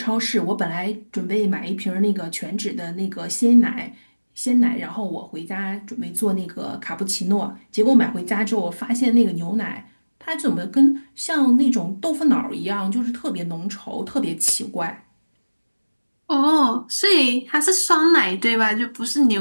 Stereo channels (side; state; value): both; inverted; correlation -1.00